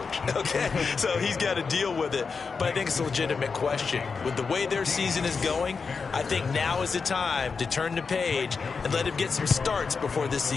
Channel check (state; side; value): quieter; right; 5.1 dB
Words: okay? So he's got to deal with it. But I think it's a legitimate question. With the way their season is going, I think now is the time to turn the page and let him get some starts before this